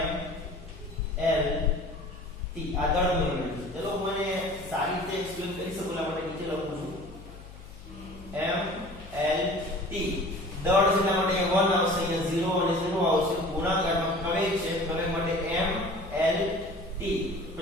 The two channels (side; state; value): left; noise; hum, 17 dB below the sound